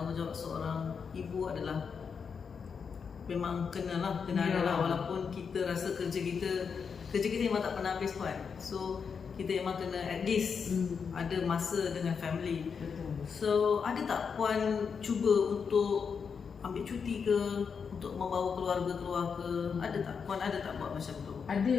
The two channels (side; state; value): right; quieter; 6.1 dB